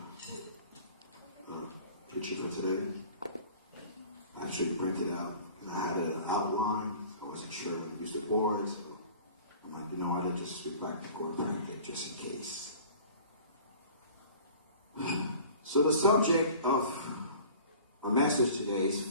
preach it for today. I actually printed out, and I had an outline. I wasn't sure when to use the board, so I'm like, you know what, I just go back and go to print it just in case. So the subject of our message today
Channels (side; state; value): both; inverted; correlation -0.45